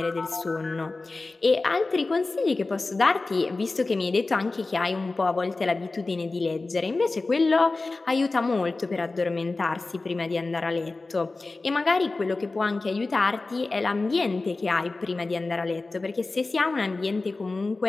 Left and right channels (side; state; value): right; quieter; 3.4 dB